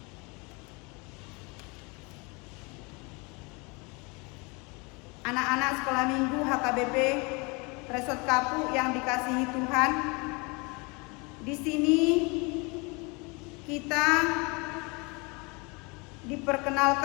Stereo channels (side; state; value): right; quieter; 28.9 dB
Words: Anak-anak sekolah minggu HKBP Resort Kapu yang dikasihi Tuhan, di sini kita